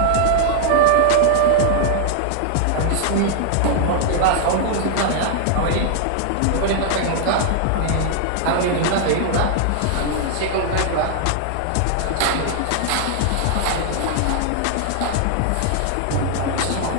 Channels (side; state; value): both; different; correlation -0.01